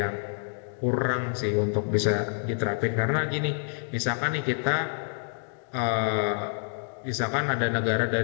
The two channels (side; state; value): right; silent; 57 dB below the other